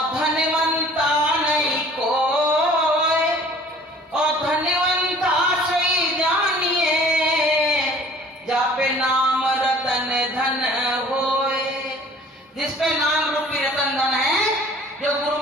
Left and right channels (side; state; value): both; normal; correlation 0.50